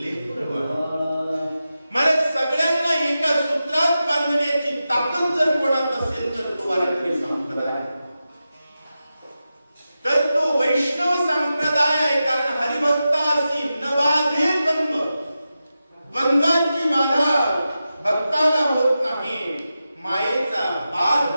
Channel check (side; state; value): both; inverted; correlation -0.92